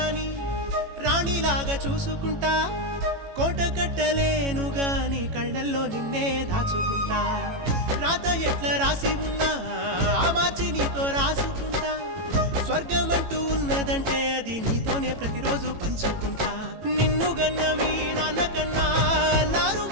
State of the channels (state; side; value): late; left; 18 ms